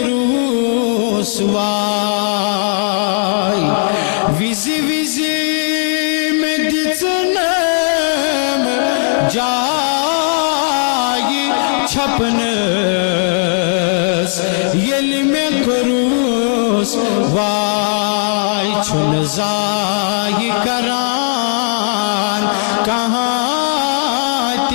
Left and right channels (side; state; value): right; silent; digital silence